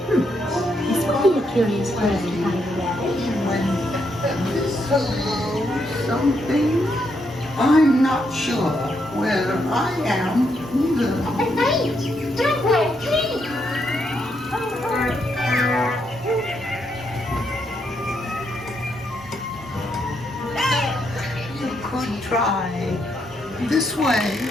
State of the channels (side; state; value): both; normal; correlation 0.78